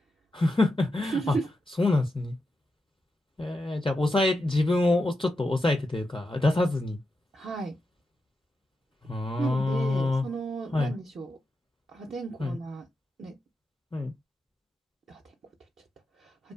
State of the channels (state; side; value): normal; both; correlation 0.87